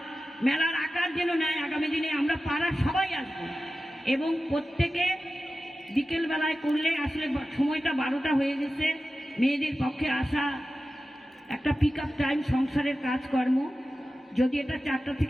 মেলার আকার যেন নেয়। আগামী দিনে আমরা পাড়ার সবাই আসবো এবং প্রত্যেকে বিকেল বেলায় করলে, আসলে সময়টা 12টা হয়ে গেছে, মেয়েদের পক্ষে আসা একটা পিক আপ টাইম, সংসারের কাজকর্ম, যদি এটা 4টা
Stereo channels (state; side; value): normal; both; correlation 0.94